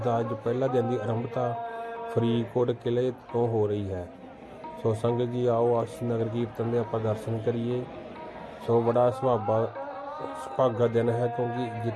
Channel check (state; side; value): identical; both; correlation 1.00